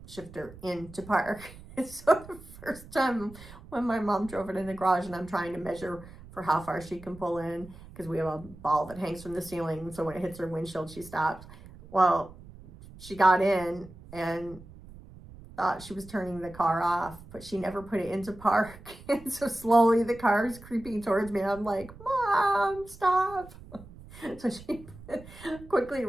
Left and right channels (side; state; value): right; noise; rumble, 18 dB below the sound